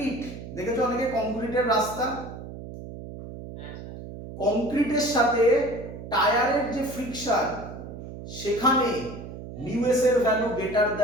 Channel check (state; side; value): noise; right; hum, 11 dB below the sound